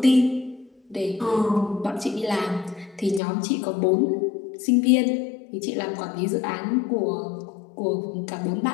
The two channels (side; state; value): right; drops out; at 3.2 s